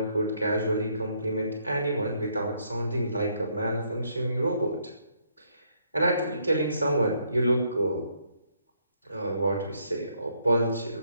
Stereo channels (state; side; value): inverted; both; correlation -0.71